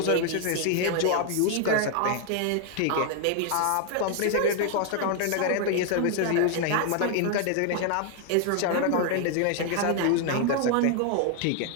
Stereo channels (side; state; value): both; different; correlation 0.00